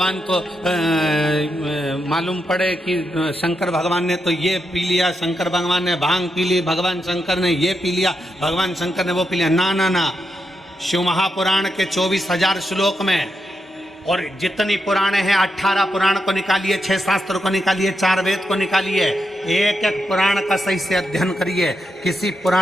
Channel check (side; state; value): both; normal; correlation 0.85